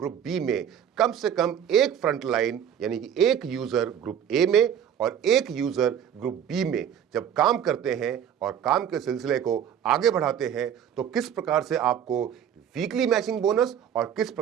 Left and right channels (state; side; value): quieter; left; 9.1 dB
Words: बी में कम से कम एक फ्रंट लाइन यानी कि एक यूजर ग्रुप ए में और एक यूजर ग्रुप बी में जब काम करते हैं और काम के सिलसिले को आगे बढ़ाते हैं तो किस प्रकार से आपको वीकली मैचिंग बोनस और किस